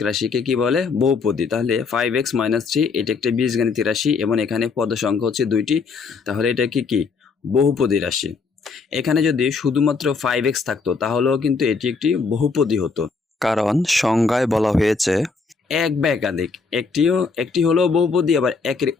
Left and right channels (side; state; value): right; quieter; 4.7 dB